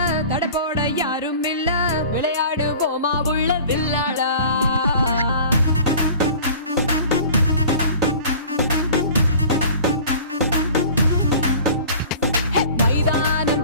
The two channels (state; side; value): inverted; both; correlation -0.43